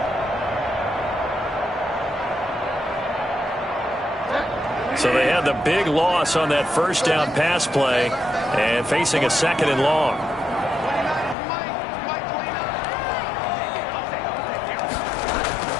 So they had the big loss on that first down pass play and facing a 2nd and long.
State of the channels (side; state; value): right; drops out; at 11.4 s